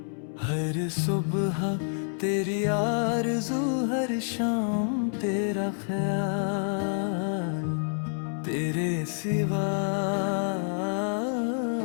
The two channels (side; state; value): right; silent; 59 dB below the other